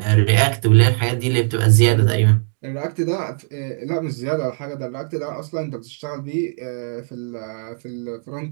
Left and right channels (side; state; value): left; silent; digital silence